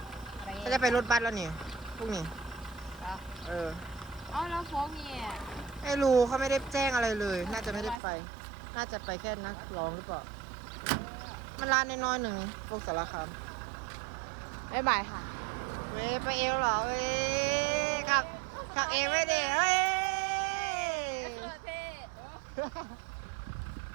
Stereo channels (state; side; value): drops out; left; at 8.0 s